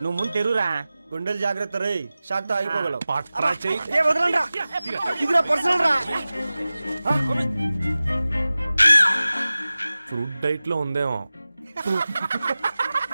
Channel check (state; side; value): inverted; both; correlation -0.97